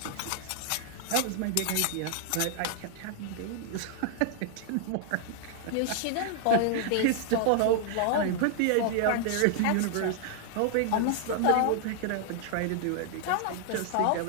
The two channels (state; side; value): different; both; correlation 0.00